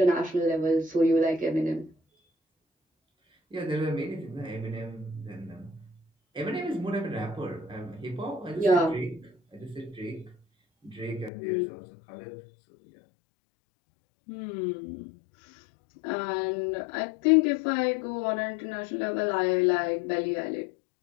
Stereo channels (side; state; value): right; drops out; at 11.3 s